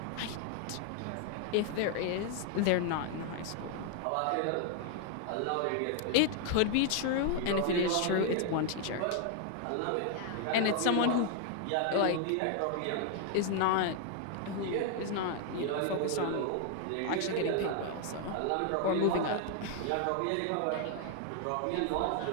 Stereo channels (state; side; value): different; both; correlation 0.00